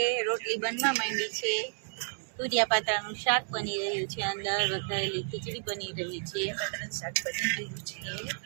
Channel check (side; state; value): left; silent; digital silence